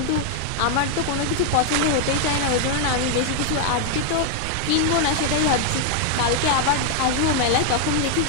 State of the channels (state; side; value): different; both; correlation 0.00